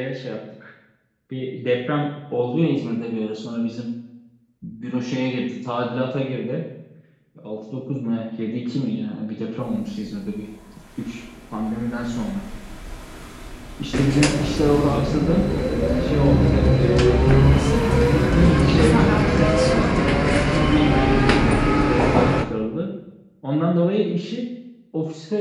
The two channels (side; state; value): both; identical; correlation 1.00